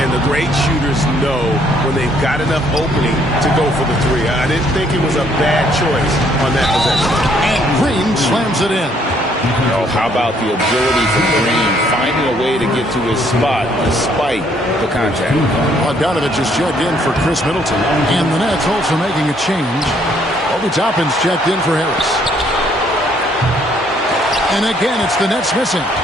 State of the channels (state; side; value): normal; both; correlation 0.66